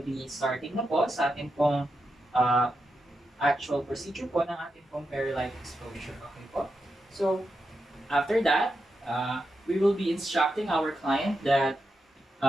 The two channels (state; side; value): normal; both; correlation 0.87